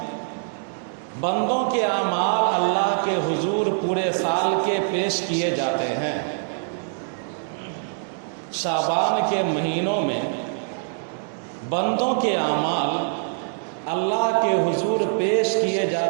بندوں کے اعمال اللہ کے حضور پورے سال کے پیش کیے جاتے ہیں۔ شعبان کے مہینوں میں بندوں کے اعمال اللہ کے حضور پیش کیے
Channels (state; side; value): silent; left; 63 dB below the other